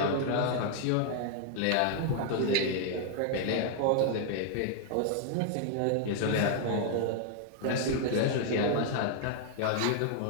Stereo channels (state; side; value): different; both; correlation 0.00